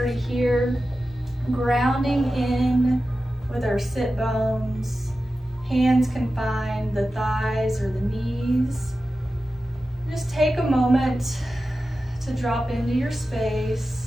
here, grounding in with our sit bones. Hands can find the thighs or the knees. Just take a moment to drop into your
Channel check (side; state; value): both; normal; correlation 0.93